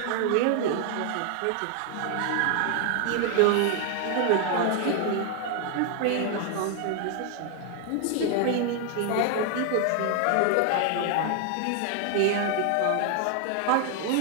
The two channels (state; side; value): different; both; correlation 0.00